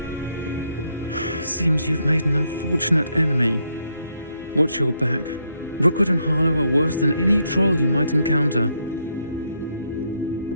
Seems you've made an unfortunate enemy. Watch your back. Rookwood and Harlow are worse than any troll you might encounter.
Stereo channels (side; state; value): both; inverted; correlation -0.76